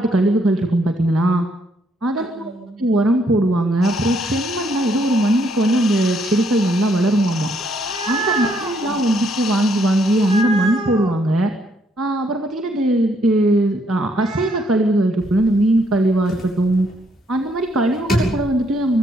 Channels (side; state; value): both; normal; correlation 0.71